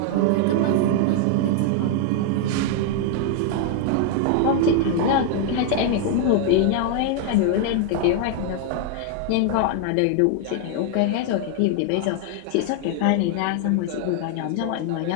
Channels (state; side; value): different; both; correlation 0.00